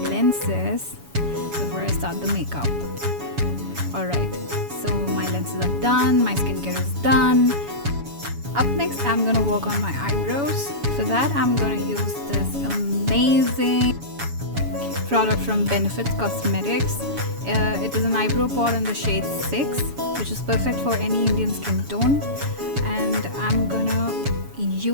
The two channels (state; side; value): late; left; 7.1 ms